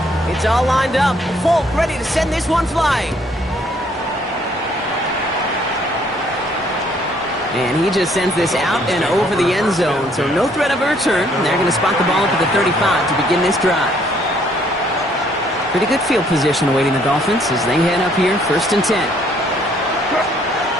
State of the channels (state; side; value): normal; both; correlation 0.65